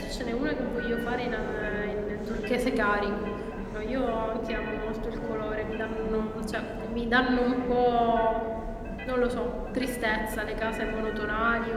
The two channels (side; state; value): both; identical; correlation 1.00